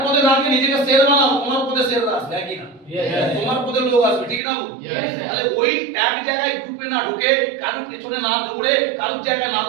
শের বানাও, তোমার পথে শের আসবে, কি না? তোমার পথে লোক আসবে, ঠিক না? তাহলে ওই এক জায়গায় গ্রুপে না ঢুকে, কারোর পেছনে না দৌড়ে, কারোর জায়গায় না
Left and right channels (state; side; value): drops out; left; at 4.4 s